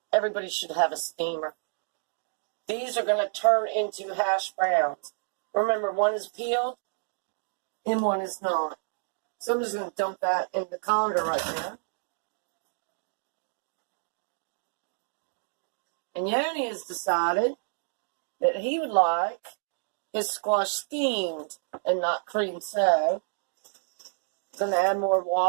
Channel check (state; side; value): silent; left; digital silence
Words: Everybody should have a steamer. These are going to turn into hash browns. Remember, one is peeled and one is not. So I'm just going to dump that in the colander right now. And Yoni has decided that he would like his squash steamed and not creamed. So, going to add more